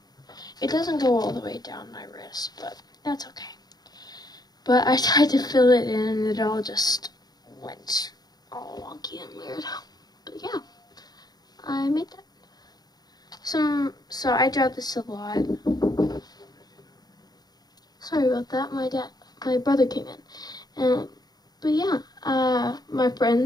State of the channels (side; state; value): right; late; 0.19 ms